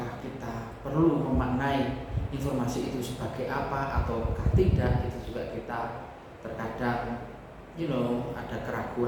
kita perlu memaknai informasi itu sebagai apa ataukah tidak, itu juga kita terkadang ada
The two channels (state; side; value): identical; both; correlation 1.00